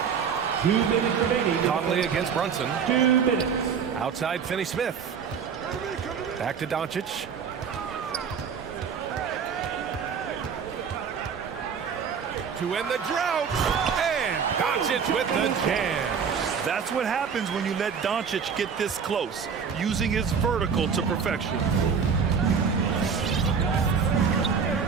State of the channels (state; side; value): quieter; left; 6.5 dB